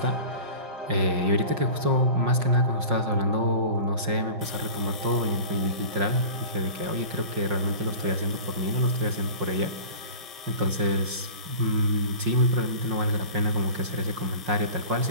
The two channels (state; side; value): late; left; 5.6 ms